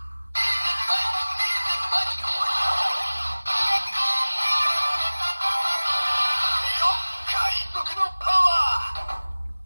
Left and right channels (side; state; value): both; inverted; correlation -1.00